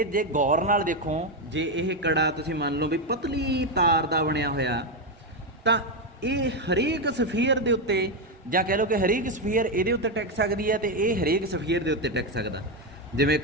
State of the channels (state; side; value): normal; both; correlation 0.07